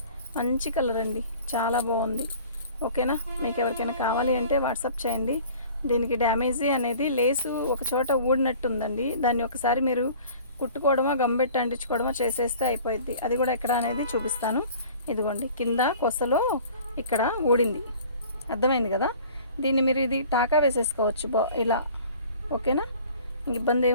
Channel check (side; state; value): both; inverted; correlation -0.47